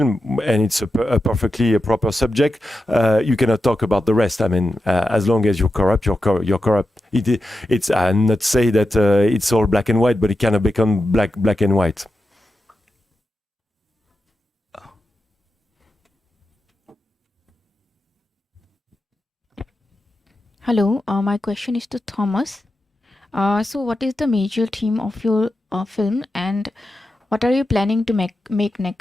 and it's a perfectly proper subject, you cannot talk about the rest. I mean, as long as you're corrupt, you're corrupt. It's not say that it's all black and white, but it cannot become black and white. Hello, my question is to Thomas. So, what is the major theme of your film, and what are you planning to make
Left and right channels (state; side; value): normal; both; correlation 0.90